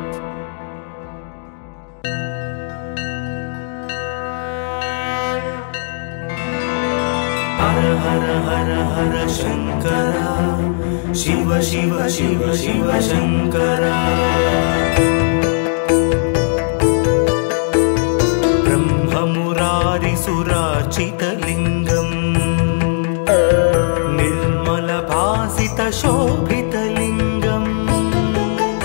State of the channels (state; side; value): silent; right; digital silence